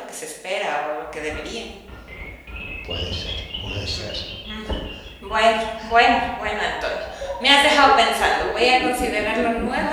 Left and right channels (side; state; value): both; identical; correlation 1.00